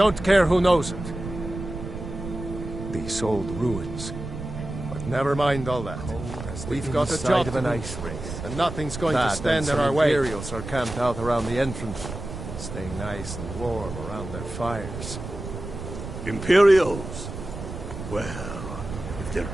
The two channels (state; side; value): noise; right; rumble, 9 dB below the sound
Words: care who knows it. These old ruins. But never mind all that. We've got a job to do, and nothing's going to stand in our way. Imperials are camped out around the entrance, staying nice and warm around their fires. Imperials? Well, if they're